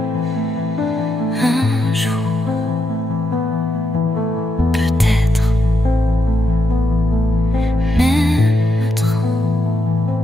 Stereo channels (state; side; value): normal; both; correlation 0.81